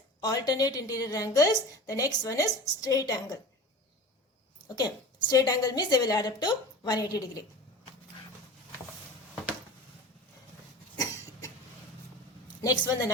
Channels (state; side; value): normal; both; correlation 0.34